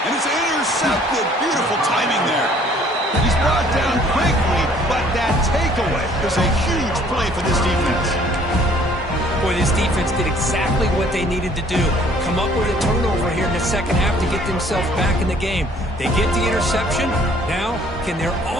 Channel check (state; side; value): normal; both; correlation 0.58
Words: And it's intercepted. Beautiful timing there. He's brought down quickly, but that takeaway is a huge play for this defense. Boy, this defense did exactly what they needed to do. Come up with a turnover here in the second half to get themselves back in the game. They get the interception. Now, can their